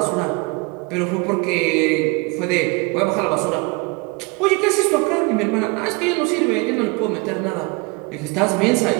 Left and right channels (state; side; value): quieter; left; 29.0 dB